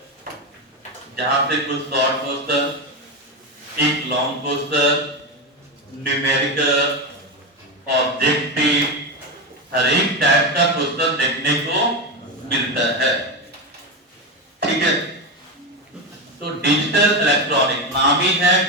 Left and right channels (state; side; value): normal; both; correlation 0.14